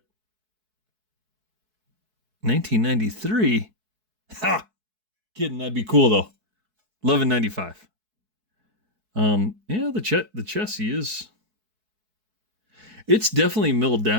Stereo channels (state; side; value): late; left; 4.6 ms